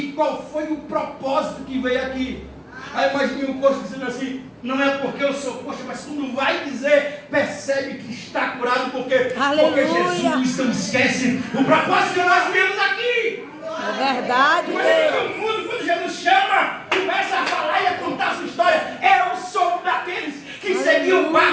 qual foi o propósito que veio aqui? Aí imagine o coxo dizendo assim: não é porque eu sou coxo, mas quando vai dizer, percebe que está curado, porque Jesus não esquece o propósito que nós viemos aqui. É verdade, Deus. Quando Jesus chama, começa a falar e a contar a sua história. Eu sou daqueles que seguiu o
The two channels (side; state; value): both; identical; correlation 1.00